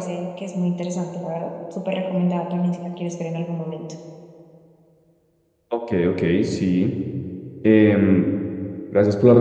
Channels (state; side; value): identical; both; correlation 1.00